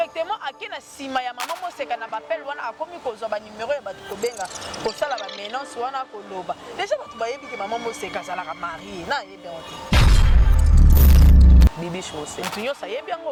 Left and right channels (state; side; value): identical; both; correlation 1.00